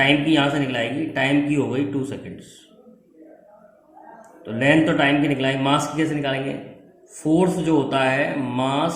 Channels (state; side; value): identical; both; correlation 1.00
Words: की यहाँ से निकलाएगी, टाइम की हो गई 2 सेकेंड्स। तो लेंथ तो टाइम की निकलाएगी। मास की कैसे निकालेंगे? फोर्स जो होता है, मास,